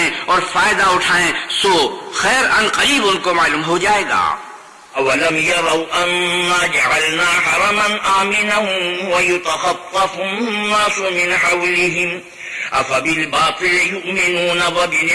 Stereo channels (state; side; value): identical; both; correlation 1.00